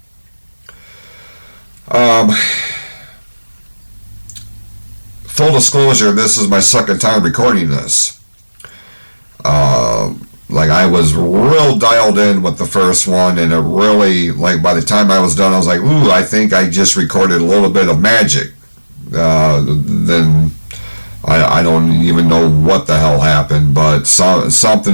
full disclosure, this is my second time recording this. I was real dialed in with the first one, and it really, by the time I was done, I was like, ooh, I think I just recorded a little bit of magic. Then I don't even know what the hell happened, but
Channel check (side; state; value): both; inverted; correlation -1.00